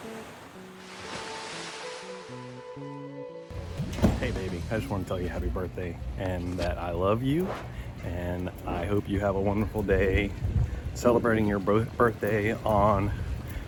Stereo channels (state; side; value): identical; both; correlation 1.00